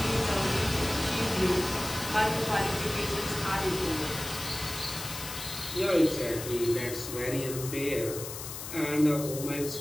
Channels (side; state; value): left; noise; hiss, 8 dB below the sound